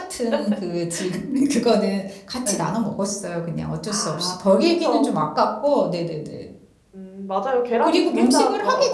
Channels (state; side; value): identical; both; correlation 1.00